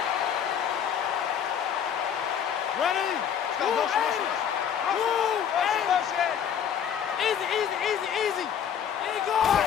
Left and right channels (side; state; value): right; quieter; 8.5 dB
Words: Ready? Let's go. Motion, motion, motion. Motion, motion. Easy, easy, easy, easy. There you go.